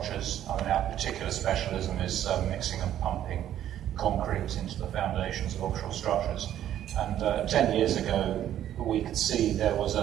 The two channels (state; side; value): quieter; left; 11.4 dB